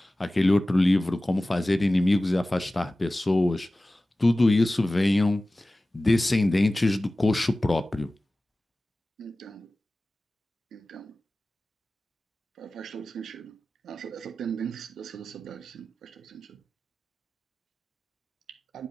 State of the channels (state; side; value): normal; both; correlation 0.97